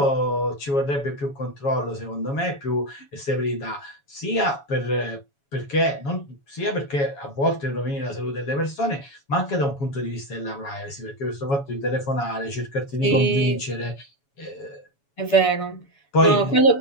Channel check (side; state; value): right; late; 7.1 ms